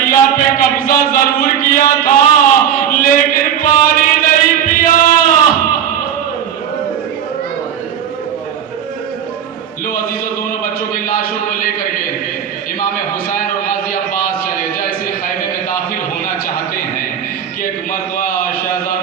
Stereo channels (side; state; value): left; quieter; 8.9 dB